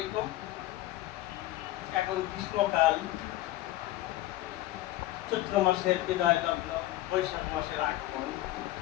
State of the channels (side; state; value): right; quieter; 16.1 dB